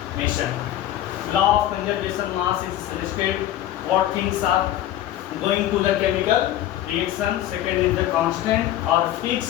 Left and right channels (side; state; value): right; quieter; 12.9 dB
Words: Law of conservation mass is suggested what things are going to the chemical reaction. Second is the constant or